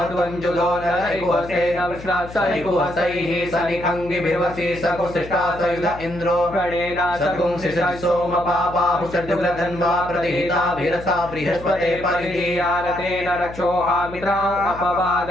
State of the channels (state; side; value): noise; left; hum, 14 dB below the sound